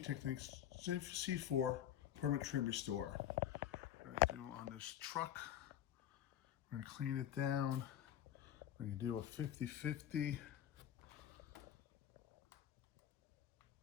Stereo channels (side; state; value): right; quieter; 11.1 dB